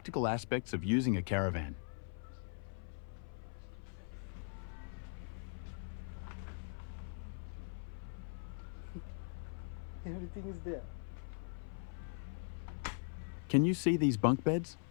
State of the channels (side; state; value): right; silent; 51 dB below the other